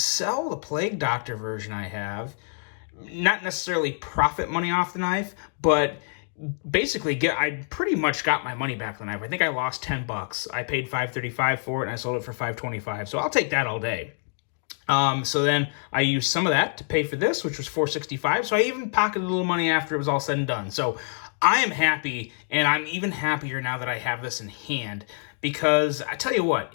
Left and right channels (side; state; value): right; silent; 61 dB below the other